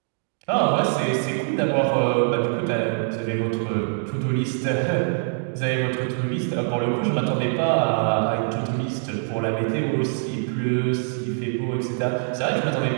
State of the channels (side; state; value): left; silent; digital silence